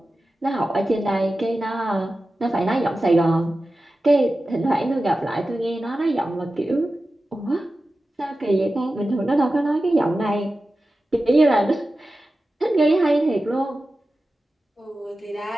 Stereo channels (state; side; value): normal; both; correlation 0.94